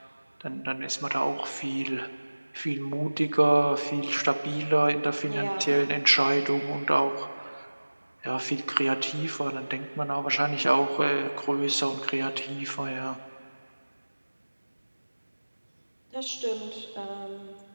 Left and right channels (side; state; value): both; inverted; correlation -1.00